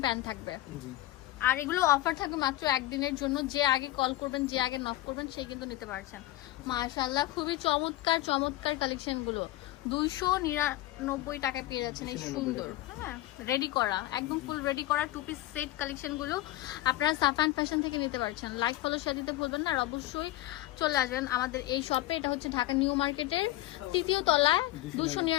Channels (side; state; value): right; quieter; 16.4 dB